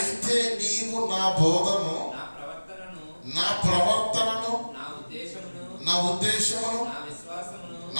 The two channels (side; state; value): both; inverted; correlation -1.00